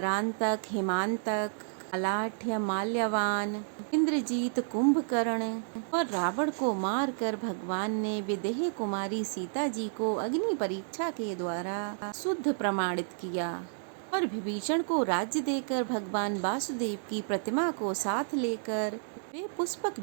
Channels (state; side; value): silent; left; digital silence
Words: हिमांतक, अलाठ्य, माल्यवान, इंद्रजीत, कुंभकर्ण और रावण को मारकर भगवान ने विदेह कुमारी सीता जी को अग्नि परीक्षा के द्वारा शुद्ध प्रमाणित किया और विभीषण को राज्य देकर भगवान वासुदेव की प्रतिमा को साथ लेकर वे पुष्पक